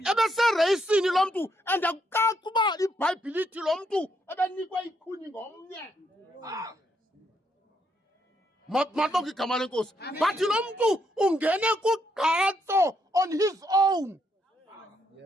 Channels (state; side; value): normal; both; correlation 0.76